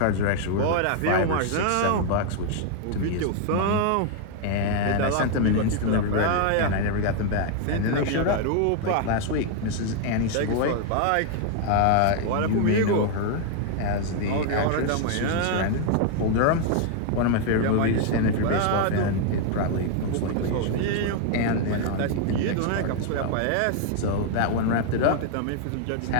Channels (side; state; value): both; different; correlation 0.00